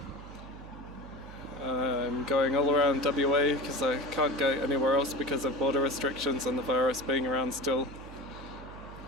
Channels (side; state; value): right; noise; hum, 15 dB below the sound